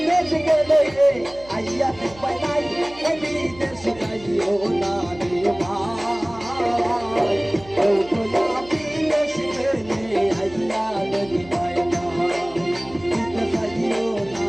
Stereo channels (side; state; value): right; noise; hum, 21 dB below the sound